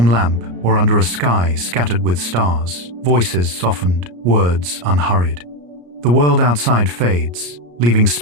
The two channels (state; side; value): late; left; 34 ms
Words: lamp or under a sky scattered with stars, voices softened, words unhurried. The world outside fades, leaving